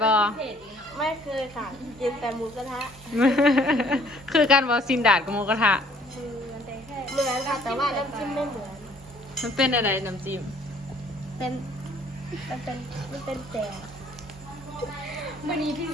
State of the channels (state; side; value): normal; both; correlation 0.59